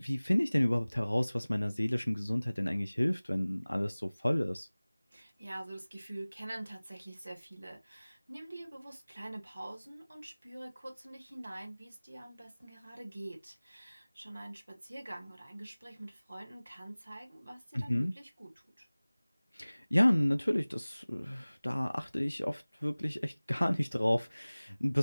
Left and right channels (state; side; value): inverted; both; correlation -1.00